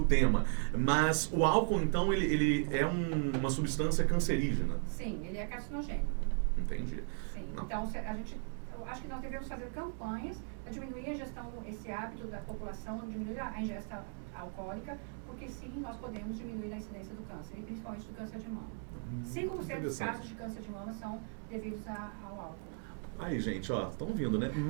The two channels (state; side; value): silent; left; 53 dB below the other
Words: tema. Mas o álcool, então, ele é uma substância cancerígena? Sim, ele é carcinogênico. Entendi. Sim. Então, eu acho que nós devemos fazer campanhas para diminuir a ingestão, esse hábito da população, diminuir a ingesta alcoólica, porque sim, nós podemos diminuir a incidência do câncer, e principalmente do câncer de mama. 5% dos casos de câncer de mama são devidos ao álcool. Aí, gente, ó, estão vindo, né?